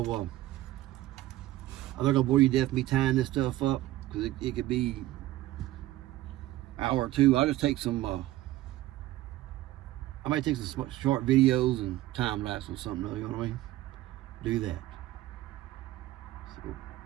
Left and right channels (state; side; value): quieter; left; 15.8 dB